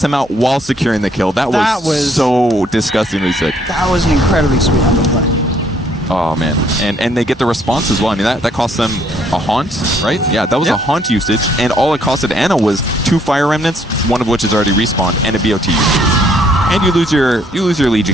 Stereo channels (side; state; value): both; normal; correlation 0.66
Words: him out while securing the kill. That was so disgustingly sick. That was an incredibly sweet underplay. Oh, man. And they get the response as well. I mean, that cost them a haunt, right? Yeah, that was a haunt usage, and all it costed Anna was 2 Fire Remnants, one of which is already respawned, and a BOT usage. And you lose your